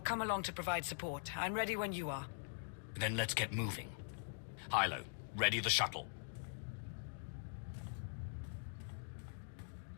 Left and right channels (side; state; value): right; silent; digital silence